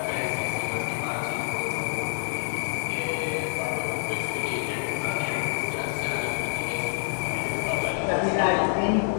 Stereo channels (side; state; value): right; silent; 60 dB below the other